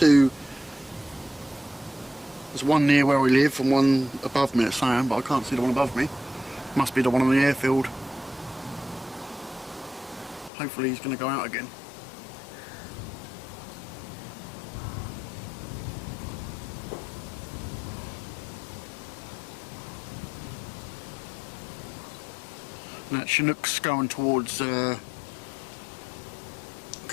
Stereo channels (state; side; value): drops out; right; at 10.5 s